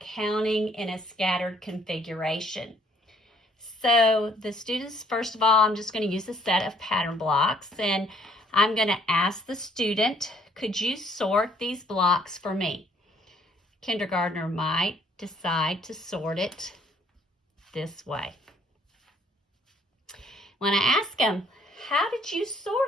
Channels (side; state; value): both; normal; correlation 0.63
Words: counting in a scattered configuration. So the students, first of all, I'm just going to use a set of pattern blocks, and I'm going to ask the student, could you sort these blocks for me? Kindergartner might decide to sort it this way. When I ask them, how did you